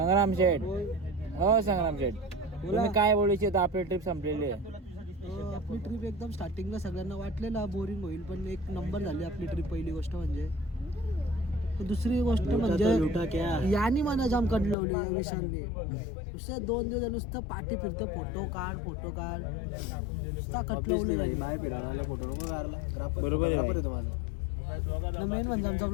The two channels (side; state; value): right; drops out; at 14.8 s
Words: हो संग्राम शेठ तुम्ही काय बोलायचे तर आपली ट्रिप संपलेली आहे. आपली ट्रिप एकदम स्टार्टिंगला सगळ्यांना वाटलेला बोरिंग होईल पण एक नंबर झाली आपली ट्रिप. पहिली गोष्ट म्हणजे दुसरी गोष्ट म्हणजे यानी मला जाम कंटलवले या विशालने. नुसते 2 दिवस नुसतं पाठी फिरतं फोटो काढ नुसता कटलवले बाहेर फिरायला फोटो नको काढला. बरोबर आहे माझा मेन म्हणजे आमचा